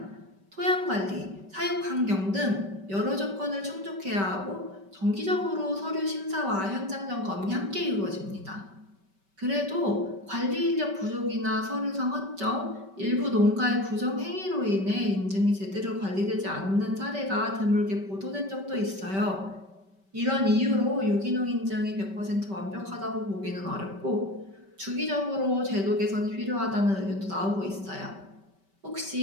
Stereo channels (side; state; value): left; late; 5.2 ms